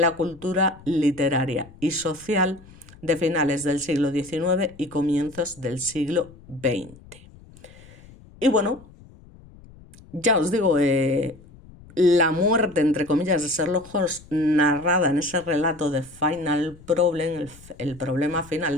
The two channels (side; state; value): left; noise; rumble, 22 dB below the sound